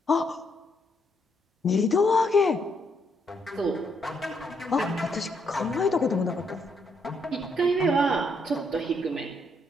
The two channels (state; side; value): normal; both; correlation 0.74